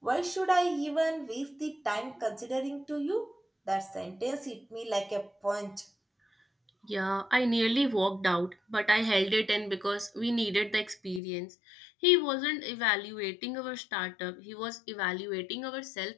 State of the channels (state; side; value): drops out; right; at 11.2 s